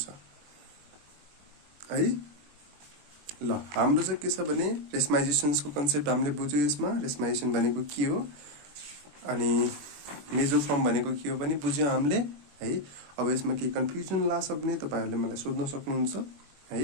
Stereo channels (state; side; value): late; left; 21 ms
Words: है। ल हाम्रो चाहिँ के छ भने रेस्माइजेसन्सको कन्सेप्ट हामीले बुझ्यौँ। यसमा रेस्माइजेसन भनेको के हो अनि मेजोफर्म भनेको के हो पनि बुझ्यौँ हामीले है। अब यसमा केही कन्फ्युजन लाग्छ भने तपाईहरुले मलाई सोध्न सक्नुहुन्छ